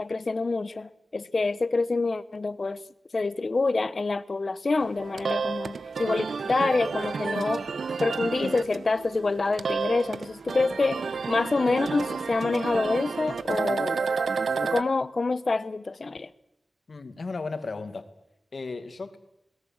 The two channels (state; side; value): normal; both; correlation 0.93